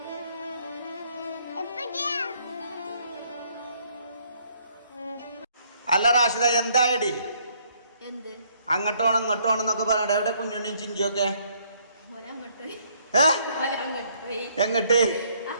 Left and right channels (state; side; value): inverted; both; correlation -0.66